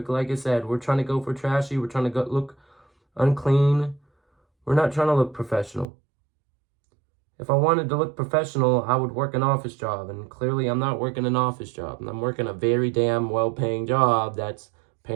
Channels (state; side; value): drops out; left; at 5.9 s